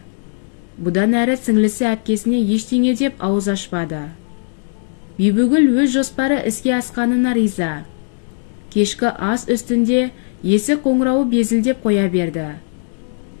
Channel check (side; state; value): right; silent; digital silence